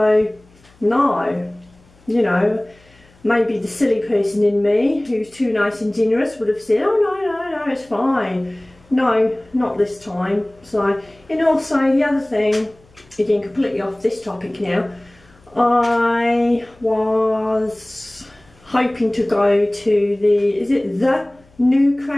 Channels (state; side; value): noise; left; hum, 29 dB below the sound